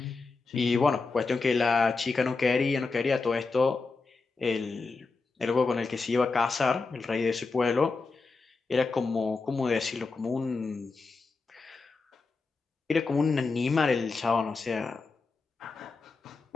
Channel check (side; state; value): right; quieter; 4.1 dB